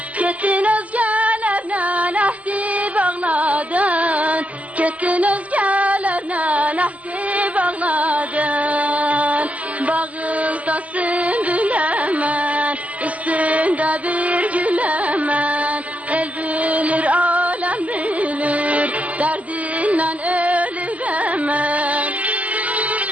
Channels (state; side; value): late; left; 0.070 ms